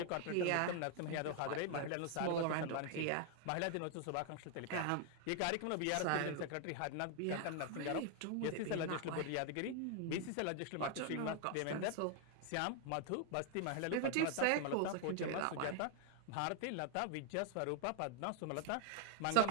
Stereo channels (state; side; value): different; both; correlation 0.00